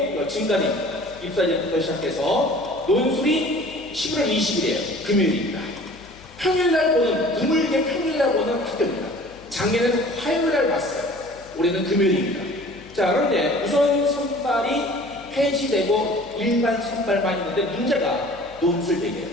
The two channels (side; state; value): left; noise; hum, 23 dB below the sound